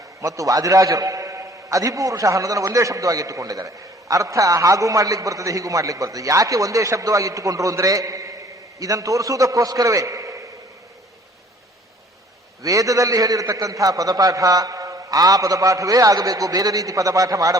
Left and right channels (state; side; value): normal; both; correlation 0.54